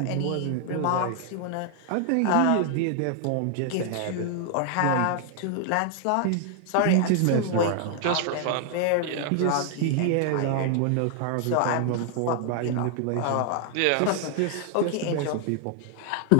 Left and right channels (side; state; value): both; different; correlation 0.00